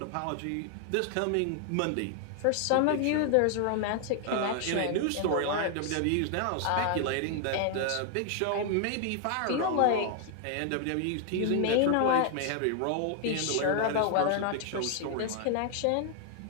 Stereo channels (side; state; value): both; different; correlation 0.00